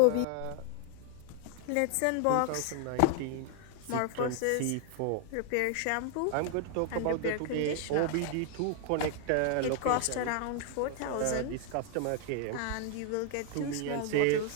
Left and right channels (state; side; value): different; both; correlation 0.00